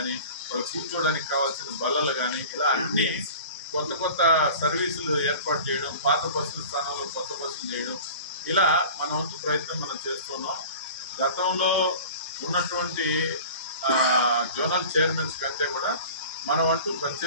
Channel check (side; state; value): both; inverted; correlation -0.40